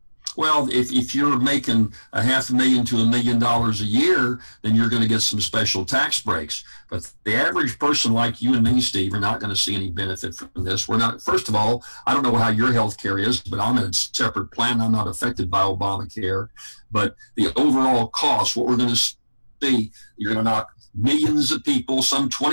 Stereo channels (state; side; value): inverted; both; correlation -1.00